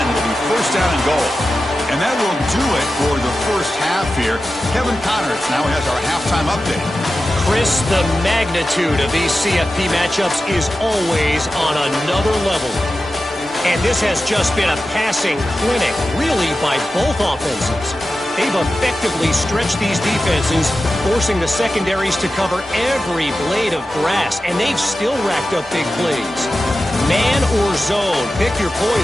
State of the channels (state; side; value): normal; both; correlation 0.93